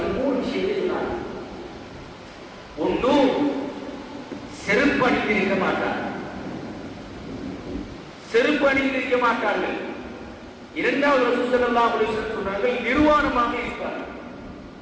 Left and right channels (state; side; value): identical; both; correlation 1.00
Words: 3 விஷயத்தை சொன்னார். ஒன்று, செருப்பு அணிந்திருக்க மாட்டார், செருப்பு அணிந்திருக்க மாட்டார்கள். இரண்டாவது ரசூல் ஸல்லல்லாஹு அலைஹி வஸல்லம் சொன்னார்கள், நிர்வாணமாக இருப்பார்கள்,